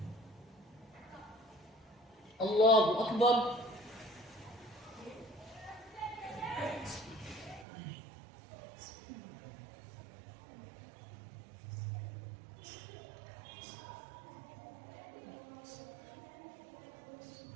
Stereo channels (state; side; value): drops out; left; at 7.7 s